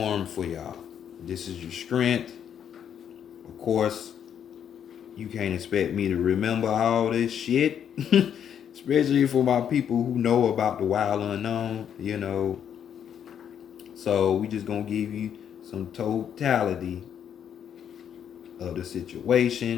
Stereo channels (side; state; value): right; quieter; 8.8 dB